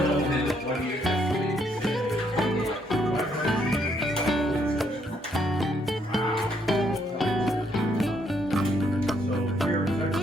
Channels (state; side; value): normal; both; correlation 0.72